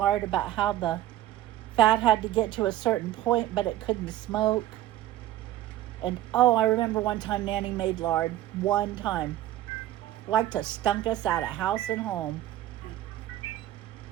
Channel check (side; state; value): left; quieter; 14.0 dB